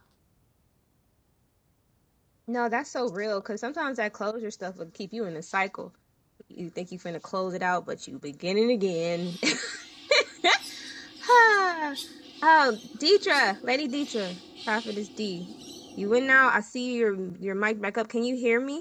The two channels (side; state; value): both; identical; correlation 1.00